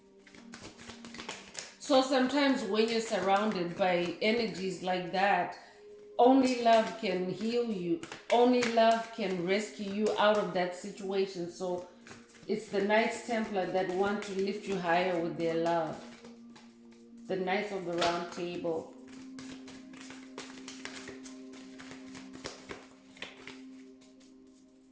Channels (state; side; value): identical; both; correlation 1.00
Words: So sometimes when you're surrounded by energies like that, only love can heal you. Only love can rescue you out of that situation. So it's the Knights Templar that want to lift you higher with their love. The Knights of the Round Table.